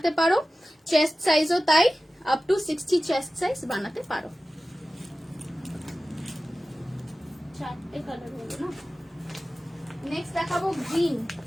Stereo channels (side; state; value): both; normal; correlation 0.95